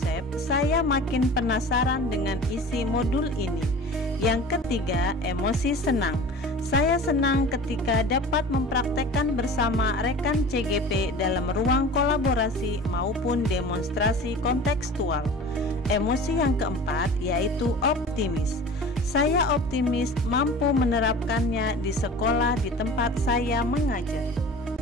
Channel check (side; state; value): both; normal; correlation 0.39